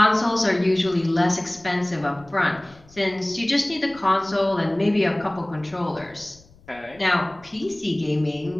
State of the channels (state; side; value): noise; left; rumble, 26 dB below the sound